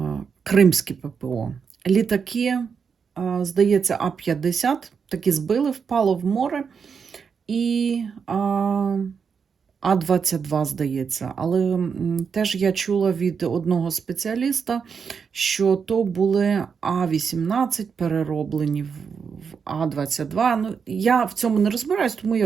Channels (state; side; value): quieter; left; 6.2 dB